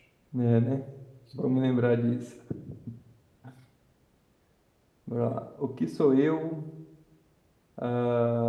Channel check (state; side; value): identical; both; correlation 1.00